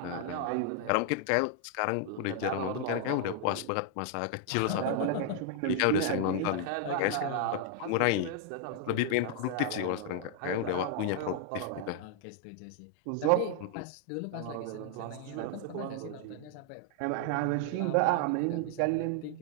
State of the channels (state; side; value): different; both; correlation 0.00